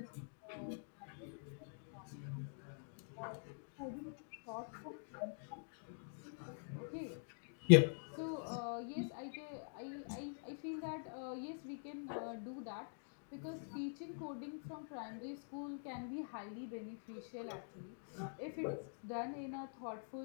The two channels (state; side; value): silent; right; digital silence